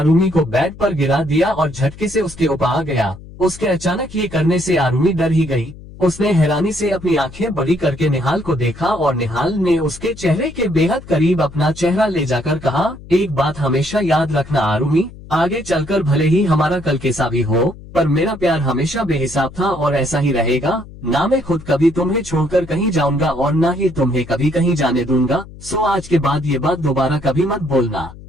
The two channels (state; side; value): noise; left; hum, 17 dB below the sound